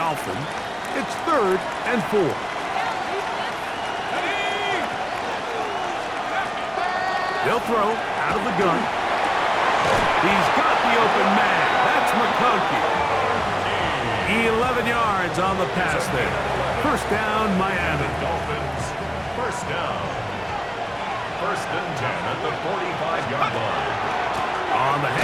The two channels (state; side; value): identical; both; correlation 1.00